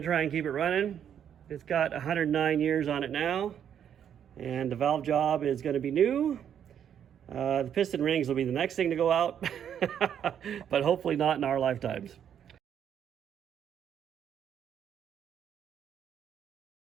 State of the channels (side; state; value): left; quieter; 9.0 dB